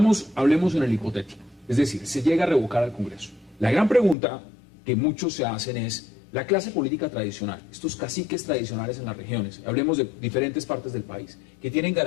hablemos en el hipotético. Es decir, se llega a revocar al Congreso. La gran pregunta que muchos se hacen es, la clase política tradicional, estos caciques tradicionales en las regiones, hablemos de diferentes partes del país, que tienen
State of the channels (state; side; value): drops out; right; at 4.2 s